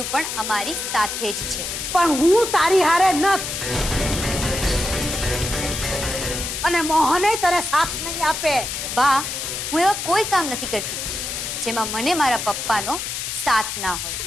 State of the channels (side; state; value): left; noise; hiss, 4 dB below the sound